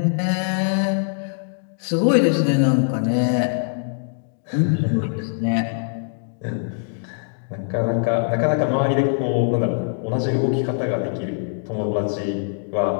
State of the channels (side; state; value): right; silent; digital silence